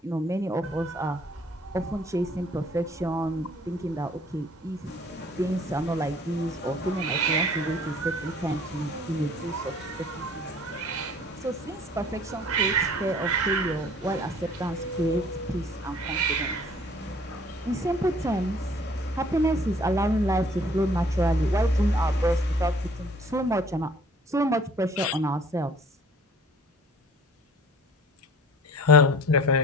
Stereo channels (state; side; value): normal; both; correlation 0.54